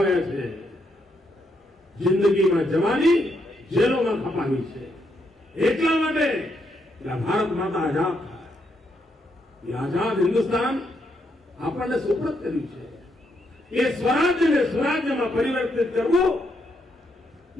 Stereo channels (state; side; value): normal; both; correlation 0.78